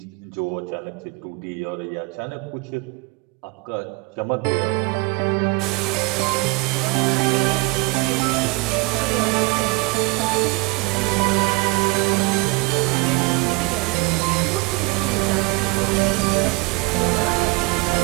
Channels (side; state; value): left; quieter; 25.5 dB